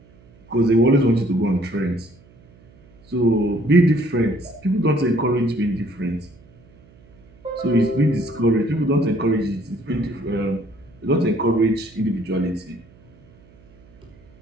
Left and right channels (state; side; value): noise; right; hum, 27 dB below the sound